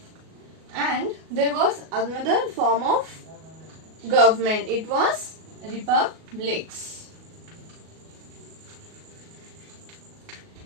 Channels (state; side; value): late; left; 37 ms